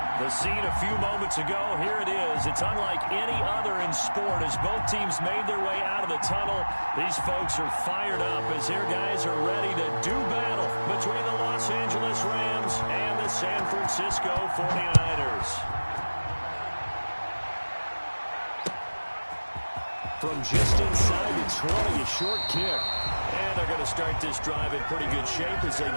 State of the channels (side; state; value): both; inverted; correlation -1.00